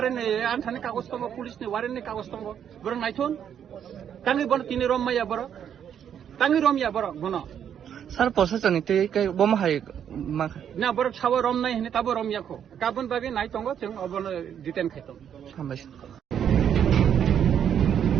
antane kagos tongo pulis ni waren ni kagos tongo. Borong naithun. Tangi bono tini rom maya boro. Tangi rom ya boro bono. Sir প্রশাসনিক থেকে বোমা high Na borok sawo rom nai hini tabo rom yako. Kabun bagi nai tongo chung obono diten khaitong. হামবাইছে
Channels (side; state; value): left; quieter; 8.9 dB